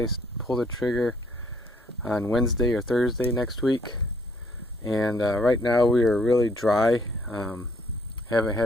pull the trigger on Wednesday or Thursday next week. And right now we are really dry. Haven't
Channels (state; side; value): normal; both; correlation 0.65